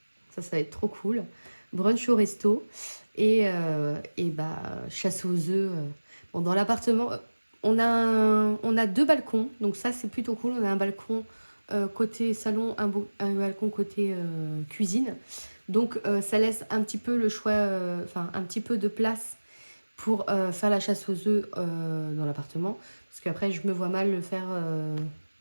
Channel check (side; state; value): both; inverted; correlation -1.00